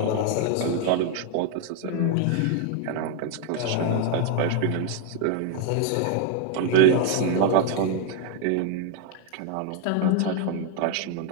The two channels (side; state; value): both; different; correlation 0.00